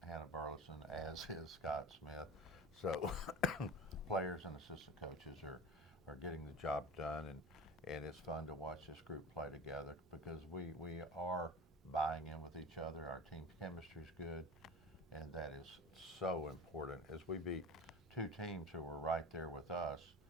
Burleson, as is Scott Smith. So players and assistant coaches are getting the job done, and it's fun to watch this group play together because we are buying in with each other. Our team chemistry is good, and that is so important. As we beat two teams who were right there with us,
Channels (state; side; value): normal; both; correlation 0.32